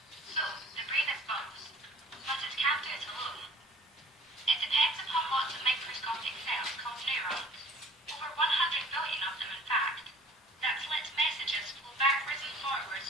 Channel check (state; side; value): normal; both; correlation 0.53